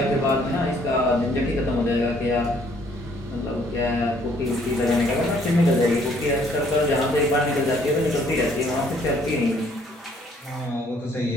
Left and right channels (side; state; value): both; normal; correlation 0.63